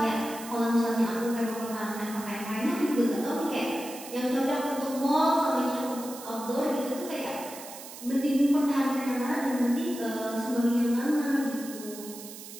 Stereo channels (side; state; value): right; noise; hiss, 13 dB below the sound